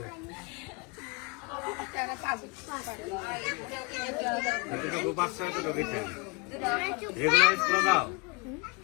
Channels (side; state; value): right; quieter; 29.5 dB